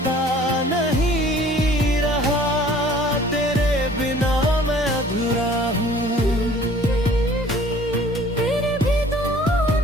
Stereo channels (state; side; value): normal; both; correlation 0.52